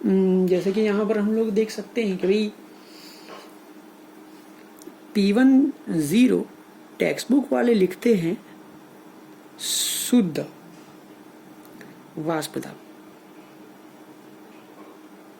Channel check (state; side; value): identical; both; correlation 1.00